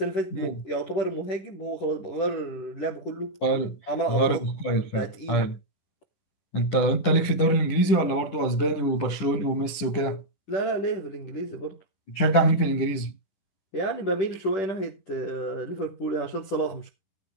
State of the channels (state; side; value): late; right; 10 ms